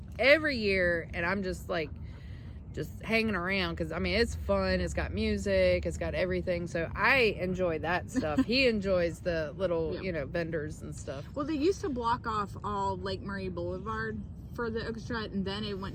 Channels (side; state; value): both; identical; correlation 1.00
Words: every year, and I'm just hanging around because, it's fun. It's got music. It's got everything. So I enjoy that stuff. He enjoys the little, vendors and stuff. Well, they used to block off all Lake Murray Boulevard for the okra strut, and then it